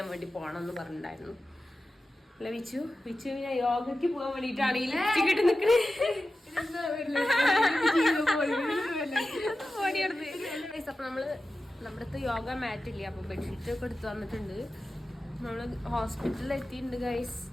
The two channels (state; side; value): normal; both; correlation 0.94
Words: വേണ്ടി പോകണമെന്ന് പറഞ്ഞിട്ടുണ്ടായിരുന്നു. അല്ല വിച്ചു പിന്നെ യോഗയ്ക്ക് പോകാൻ വേണ്ടിട്ടാണ് ഈ ലിപ്സ്റ്റിക് ഇട്ട് നിക്കണേ. അപ്പൊ നമ്മള് നമ്മുടെ അടുത്ത് യോഗ മാറ്റ് ഇല്ല, അപ്പൊ ബെഡ്ഷീറ്റ് ഒക്കെ എടുത്ത് വന്നിട്ടുണ്ട്. നമ്മള് ഹോസ്പിറ്റലിൽ എത്തിയിട്ടുണ്ട് ഗൈസ്.